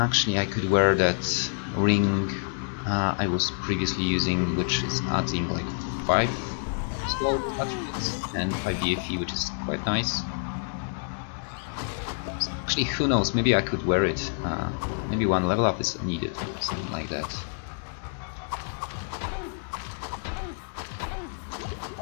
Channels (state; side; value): silent; right; digital silence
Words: I could wear that ring I was previously using, which is adding like 5 slow attributes and 5 DFE, which is quite nice. So actually, who knows? Maybe I could wear it. Maybe 1 level up is needed, something like that.